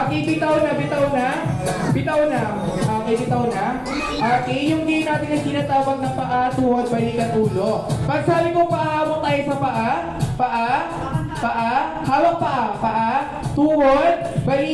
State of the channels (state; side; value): identical; both; correlation 1.00